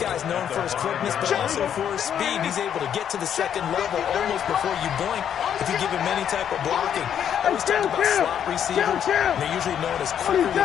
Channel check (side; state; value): right; quieter; 9.1 dB